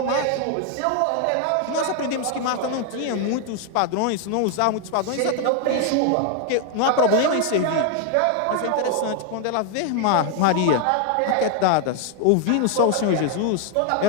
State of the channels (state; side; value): different; both; correlation 0.00